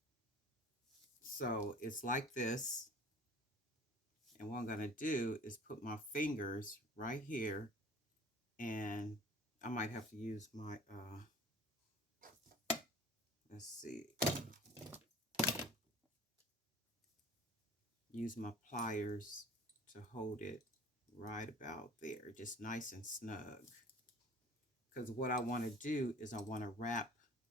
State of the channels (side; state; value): both; normal; correlation 0.46